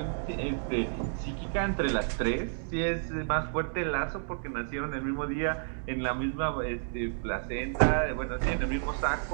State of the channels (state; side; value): silent; left; digital silence